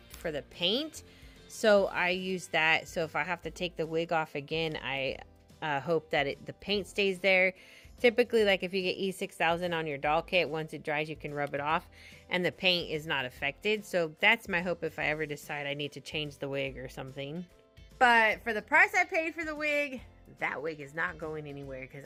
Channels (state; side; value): identical; both; correlation 1.00